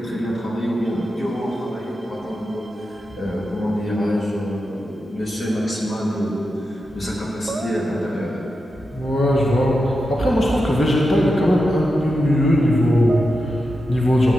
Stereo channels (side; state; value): both; normal; correlation 0.89